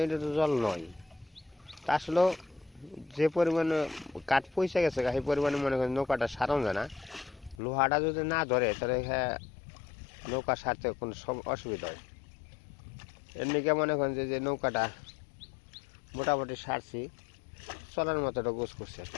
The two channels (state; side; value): drops out; right; at 7.6 s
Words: তো জল নয়, তা আসলে যে পরিমাণে কাঠ পয়সা গেছে সেই পরিমাণে মনে করেন নৌকাটা সারানো যায় না। লোহাটা যদি না ধরে তাহলে নৌকা সারতে কোনো অসুবিধা হয়। এমনিকে মনে করেন যে নৌকাটা মোটামুটি সারছি, চলার মতো একটা গোছ করছে আর